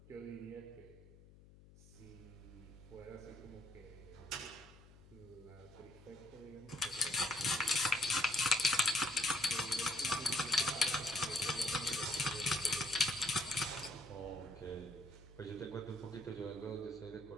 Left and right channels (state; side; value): noise; left; hum, 22 dB below the sound